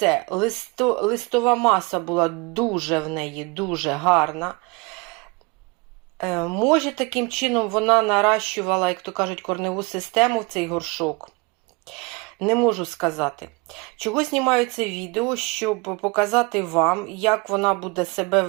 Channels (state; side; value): quieter; left; 28.2 dB